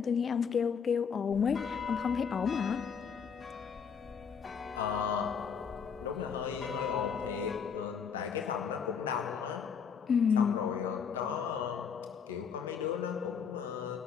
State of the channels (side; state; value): right; quieter; 6.6 dB